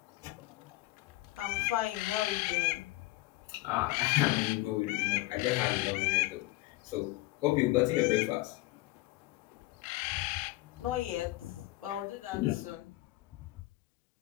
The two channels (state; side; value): quieter; right; 19.1 dB